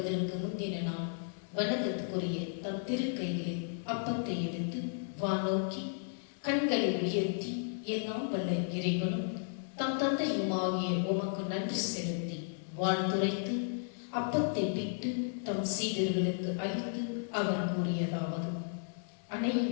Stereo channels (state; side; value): silent; right; digital silence